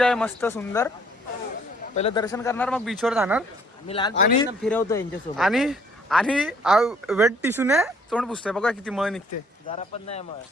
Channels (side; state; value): both; normal; correlation 0.61